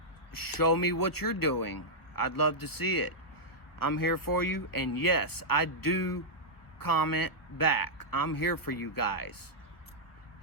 show me what you're doing. I'd love to see it. I'm here for you. And yes, I do comment back. I'm here for you guys.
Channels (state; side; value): late; right; 1.1 ms